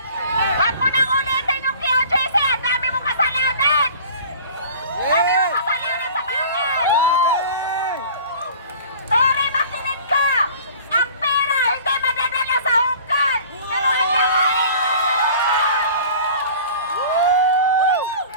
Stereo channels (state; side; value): inverted; both; correlation -0.45